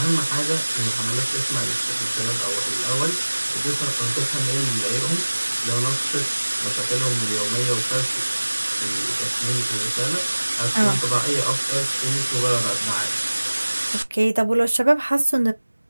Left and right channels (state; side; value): inverted; both; correlation -1.00